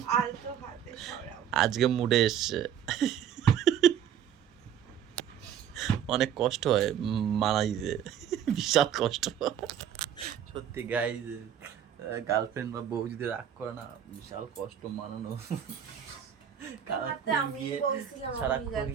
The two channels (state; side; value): quieter; left; 9.2 dB